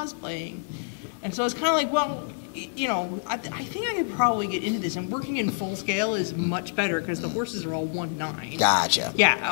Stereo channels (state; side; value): silent; right; digital silence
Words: And so I was kind of like, well, you know, I think I could probably get into this. And working in full scale is much better because the horses are all 1/9. Gotcha. Yeah.